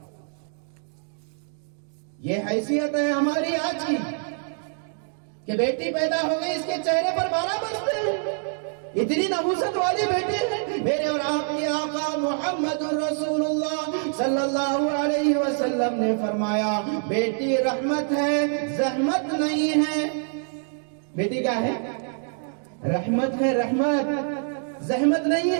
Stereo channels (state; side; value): silent; left; 61 dB below the other